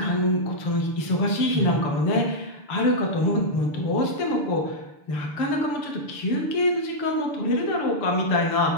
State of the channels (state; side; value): late; right; 6.8 ms